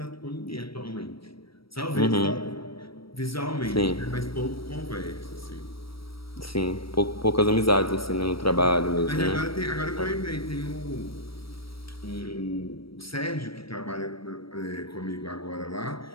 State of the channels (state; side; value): late; right; 0.75 ms